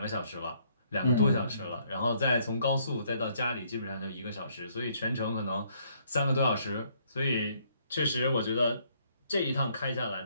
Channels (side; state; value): both; inverted; correlation -0.68